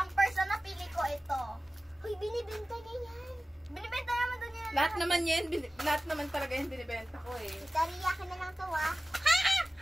first na napili ko ito. Uy, binibenta niya yan. Binibenta naman doon yan. Lahat naman yan, lahat naman talaga yung binibenta ko eh. Tariya ka na lang to, ah.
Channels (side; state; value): both; normal; correlation 0.96